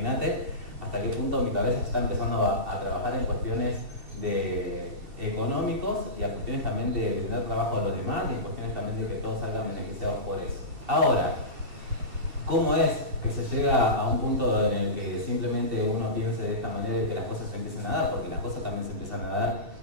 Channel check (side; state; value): left; late; 2.7 ms